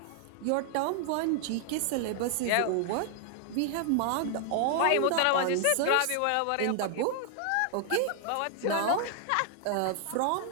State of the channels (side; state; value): both; different; correlation 0.00